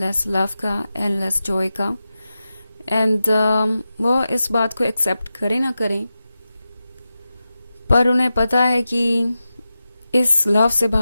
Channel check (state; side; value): inverted; both; correlation -0.92